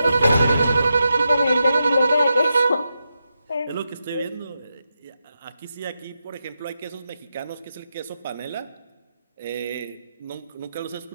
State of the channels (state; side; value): inverted; both; correlation -0.87